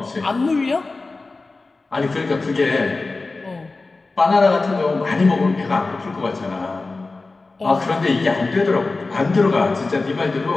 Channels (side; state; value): right; quieter; 3.6 dB